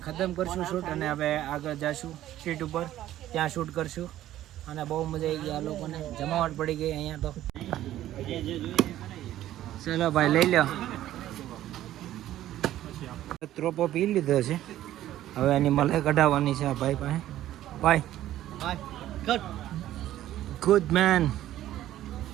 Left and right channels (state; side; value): quieter; left; 13.3 dB